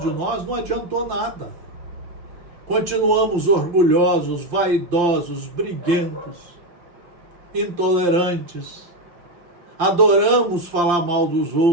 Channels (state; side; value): late; left; 5.8 ms